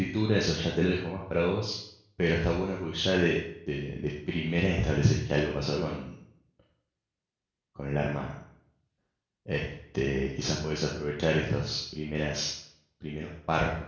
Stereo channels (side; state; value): both; identical; correlation 1.00